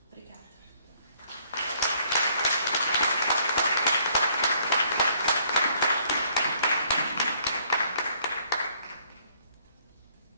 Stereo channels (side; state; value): both; inverted; correlation -0.64